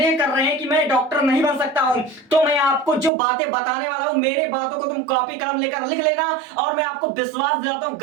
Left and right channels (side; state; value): left; drops out; at 3.1 s